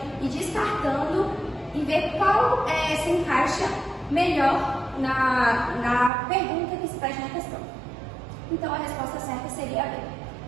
descartando e ver qual se encaixa melhor na pergunta que se faz na questão. Então a resposta certa seria a B.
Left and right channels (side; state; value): left; drops out; at 6.1 s